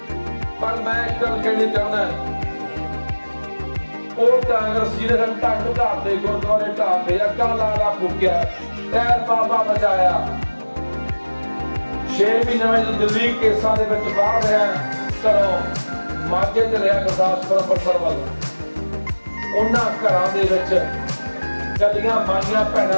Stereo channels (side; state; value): both; inverted; correlation -1.00